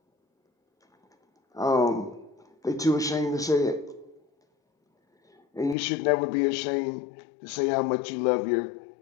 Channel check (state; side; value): drops out; right; at 5.8 s